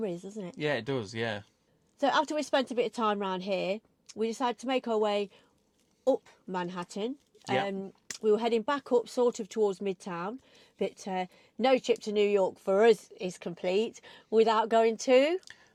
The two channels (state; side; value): identical; both; correlation 1.00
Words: doesn't it? Yeah, it does, yeah. So after we spent a bit of time around here, we decided to make our way up Manhattan. Yeah. We were heading back up sort of towards Midtown, but no trip to New York for us is complete without going to